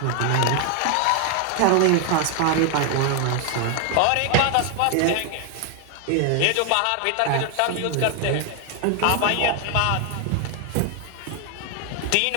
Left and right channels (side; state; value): both; different; correlation 0.01